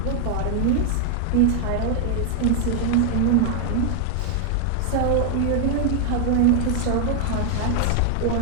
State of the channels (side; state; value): both; different; correlation 0.00